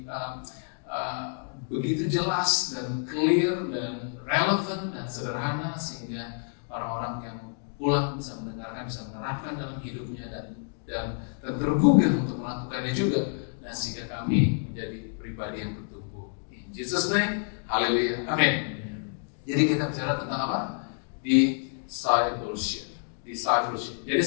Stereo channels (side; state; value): right; silent; 59 dB below the other